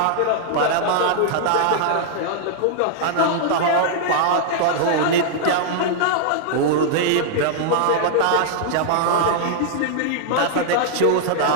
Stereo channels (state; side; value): different; both; correlation -0.01